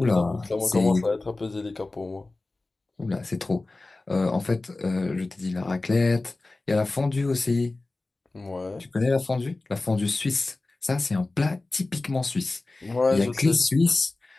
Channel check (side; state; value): right; quieter; 3.2 dB